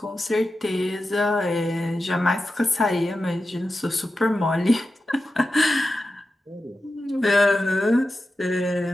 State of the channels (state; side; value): normal; both; correlation 0.92